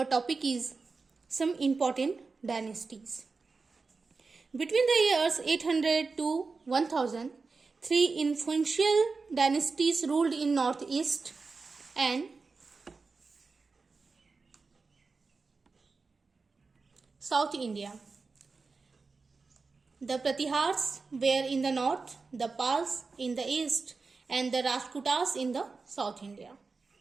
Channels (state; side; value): quieter; left; 4.3 dB